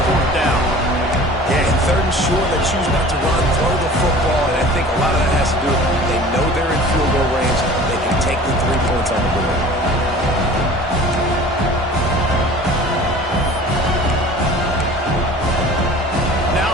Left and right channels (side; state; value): both; normal; correlation 0.44